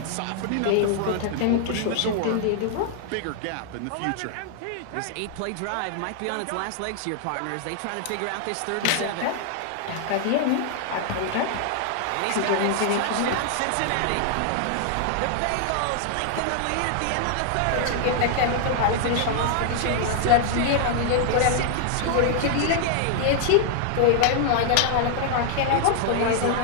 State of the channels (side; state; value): both; different; correlation 0.00